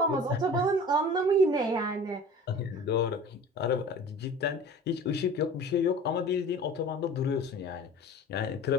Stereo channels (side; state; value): both; normal; correlation 0.41